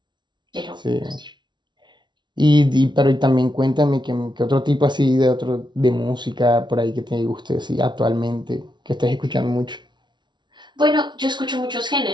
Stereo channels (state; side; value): late; left; 0.22 ms